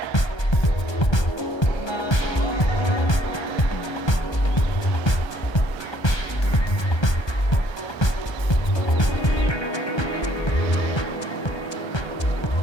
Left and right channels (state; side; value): late; right; 1.3 ms